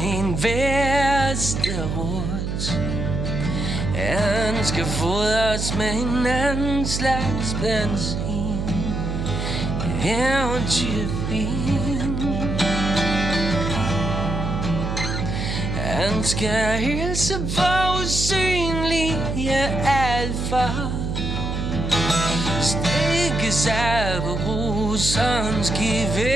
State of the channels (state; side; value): noise; right; hum, 2 dB below the sound